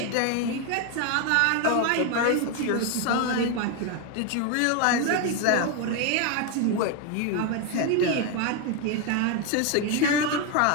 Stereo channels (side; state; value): both; different; correlation 0.01